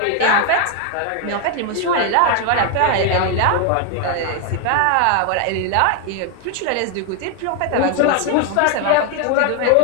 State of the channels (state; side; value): different; both; correlation 0.01